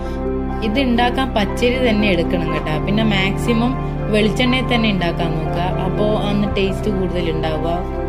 ഇത് ഉണ്ടാക്കാൻ പച്ചരി തന്നെ എടുക്കണം കേട്ടോ. പിന്നെ മാക്സിമം വെളിച്ചെണ്ണയിൽ തന്നെ ഉണ്ടാക്കാൻ നോക്കുക. അപ്പോൾ അന്ന് ടേസ്റ്റ് കൂടുതൽ ഉണ്ടാവുക.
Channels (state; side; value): identical; both; correlation 1.00